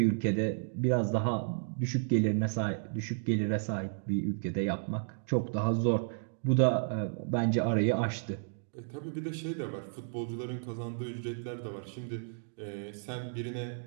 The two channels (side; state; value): left; silent; digital silence